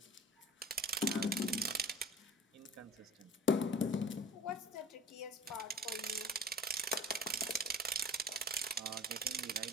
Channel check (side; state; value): both; normal; correlation 0.41